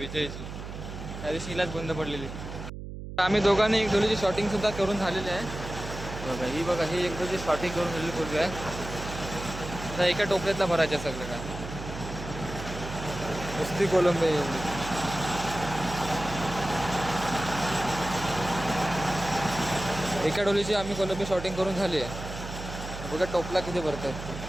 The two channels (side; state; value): right; noise; hum, 9 dB below the sound